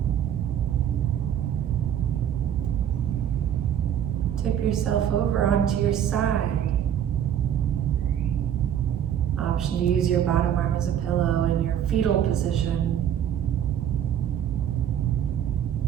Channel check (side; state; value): left; quieter; 9.7 dB